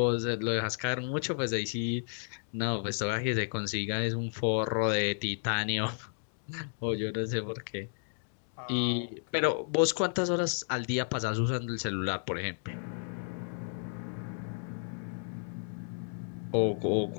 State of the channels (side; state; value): right; silent; digital silence